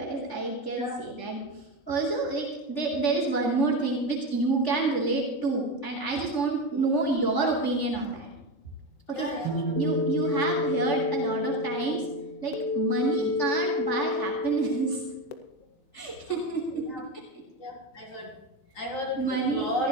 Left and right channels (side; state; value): right; late; 3.5 ms